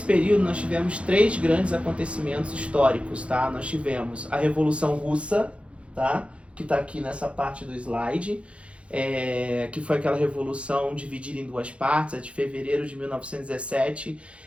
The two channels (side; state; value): left; late; 0.060 ms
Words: período nós tivemos três grandes acontecimentos históricos, tá? Nós tivemos a Revolução Russa, tá? Que está aqui nessa parte do slide, que foi aquela revolução dividida em duas partes, a de fevereiro de 1917,